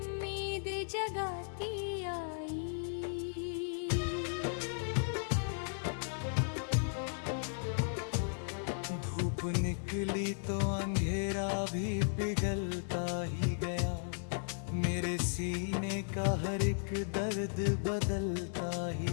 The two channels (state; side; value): silent; right; digital silence